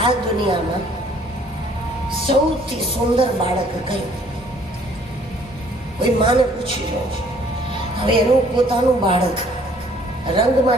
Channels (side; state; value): both; normal; correlation 0.59